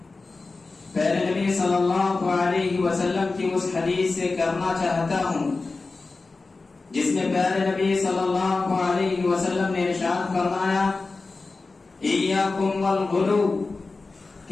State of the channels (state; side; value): quieter; right; 3.8 dB